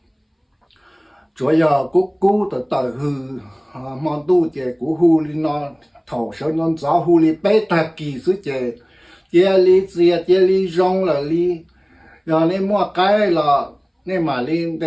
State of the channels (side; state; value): both; identical; correlation 1.00